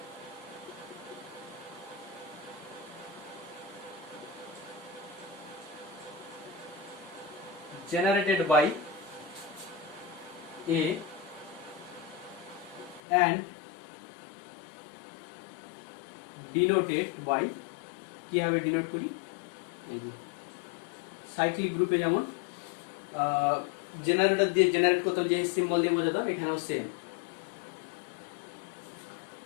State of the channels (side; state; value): right; drops out; at 13.0 s